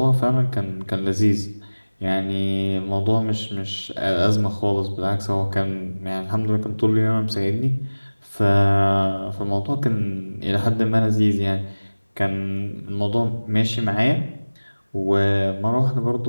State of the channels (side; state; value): both; inverted; correlation -1.00